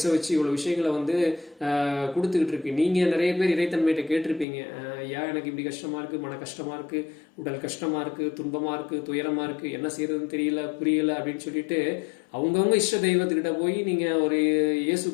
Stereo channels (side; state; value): right; drops out; at 4.5 s